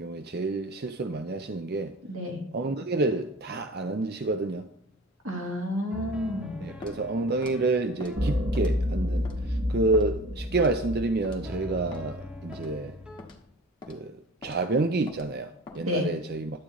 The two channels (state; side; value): normal; both; correlation 0.39